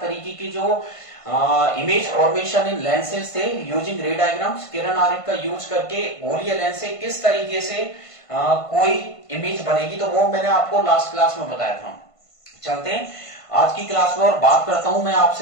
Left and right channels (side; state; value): right; late; 1.5 ms